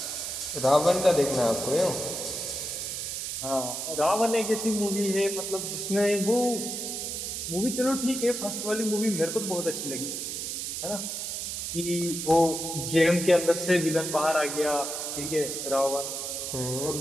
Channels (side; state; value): right; noise; hiss, 4 dB below the sound